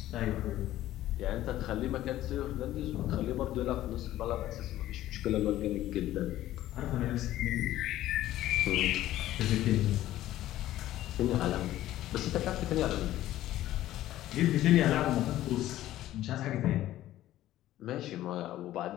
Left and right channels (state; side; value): quieter; right; 14.2 dB